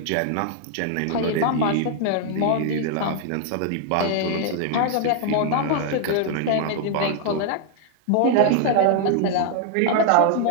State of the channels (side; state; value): both; different; correlation 0.00